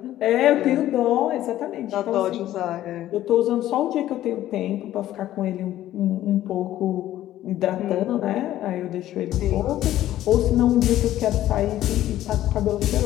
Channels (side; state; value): right; quieter; 13.4 dB